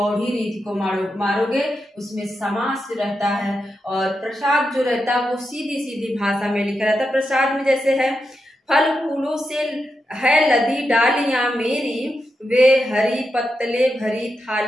रीति को मारोगे। उसमें समास रहता है, और प्रसाद जो रहता है वो सीधी सीधी भाषा में लिखा रहता है। प्रसाद में जैसे है, फल फूलों से है लदी डालियां मेरी, वे हरी पत्तले भरी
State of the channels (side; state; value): both; normal; correlation 0.87